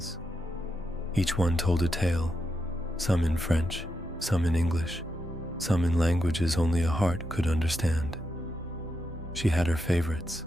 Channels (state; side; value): normal; both; correlation 0.84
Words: Each one told a tale, some in French, some in English, some in languages only a heart could understand. She had her favorites: